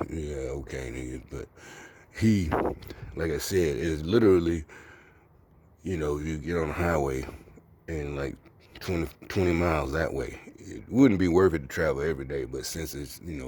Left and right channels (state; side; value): identical; both; correlation 1.00